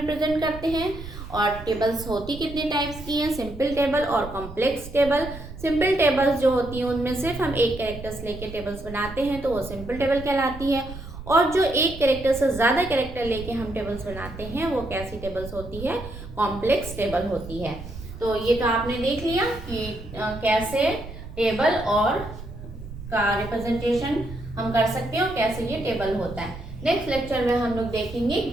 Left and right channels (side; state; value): right; noise; rumble, 12 dB below the sound